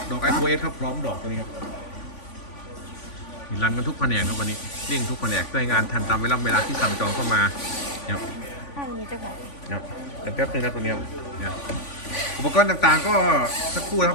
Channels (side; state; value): right; late; 3.5 ms